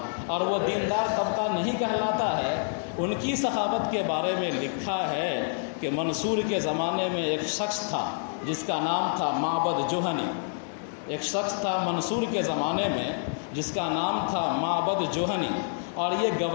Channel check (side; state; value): right; silent; digital silence